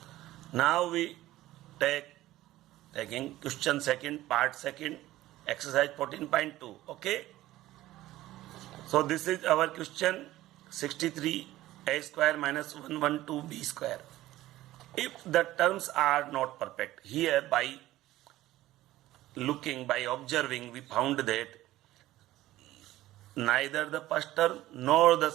Now we taking question second, part second, exercise 14.2. Okay. So this is our question 63 a square minus 112 b square. If the terms are not perfect, here by looking, by observing, we found that neither the first term nor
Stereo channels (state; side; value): quieter; left; 15.7 dB